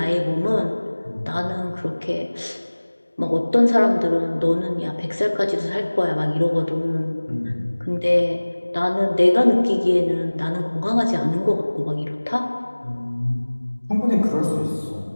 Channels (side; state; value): both; inverted; correlation -1.00